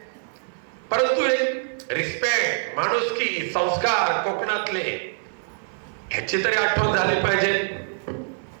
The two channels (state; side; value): silent; left; 56 dB below the other